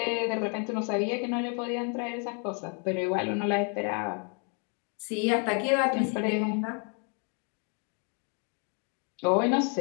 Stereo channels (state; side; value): quieter; right; 38.9 dB